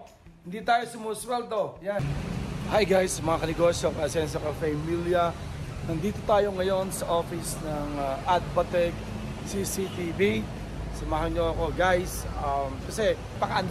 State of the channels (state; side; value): identical; both; correlation 1.00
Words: Hindi tayo sumusweldo. Yan. Hi guys, mga kanegosyo, Ascenso Cafe Emilia. Nandito tayo ngayon sa office ng Adbatec CCTV. Samahan nyo ako guys. Kasi